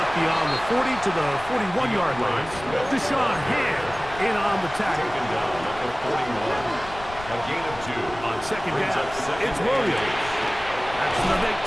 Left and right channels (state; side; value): noise; left; rumble, 15 dB below the sound